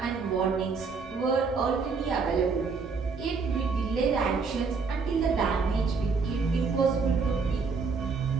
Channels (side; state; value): left; quieter; 4.9 dB